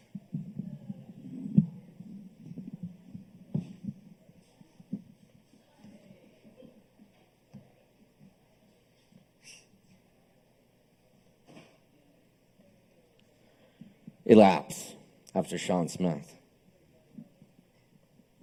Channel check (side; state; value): both; identical; correlation 1.00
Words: Elapse after Sean Smith.